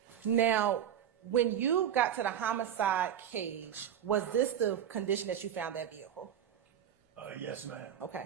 Now, when you got to the homicide cage, was this the condition that you found that vehicle? Yes, ma'am.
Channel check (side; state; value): left; quieter; 9.6 dB